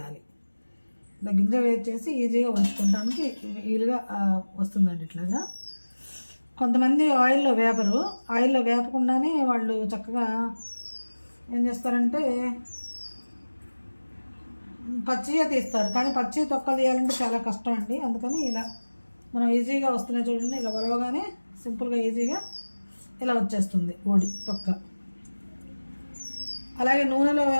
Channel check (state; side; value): inverted; both; correlation -1.00